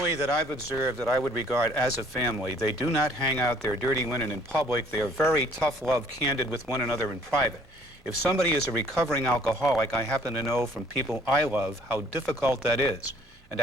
that I've observed that I would regard as a family, they do not hang out their dirty linen in public. They are very tough love, candid with one another in private. If somebody is a recovering alcoholic, I happen to know from people I love how difficult that is. And to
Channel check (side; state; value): both; normal; correlation 0.58